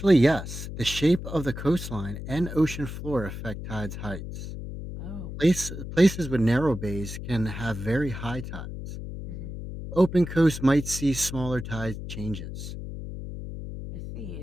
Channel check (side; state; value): left; noise; hum, 8 dB below the sound